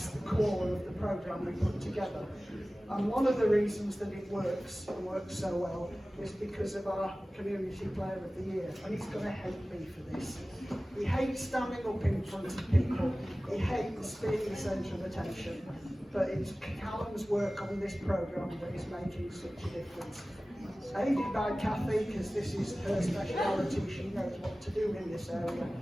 the core of the programme we put together. And one of the reasons that it works and works so well is because of our Community Player of the Year. And he's going to hate me for this. He hates standing up in front of people. He hates being the centre of attention. But it's Callum's work on this programme that is making such a difference. Aided by Kathy, because this is her speciality, she knows what to do in this area.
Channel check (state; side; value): normal; both; correlation 0.97